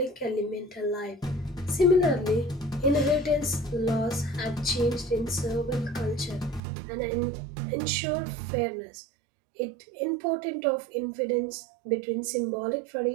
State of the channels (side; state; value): left; drops out; at 6.6 s